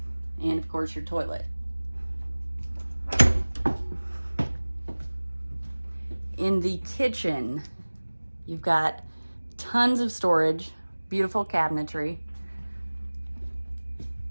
And of course your toilet. In the kitchen, you've got tons of storage, beautiful cabinetry,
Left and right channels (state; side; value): inverted; both; correlation -1.00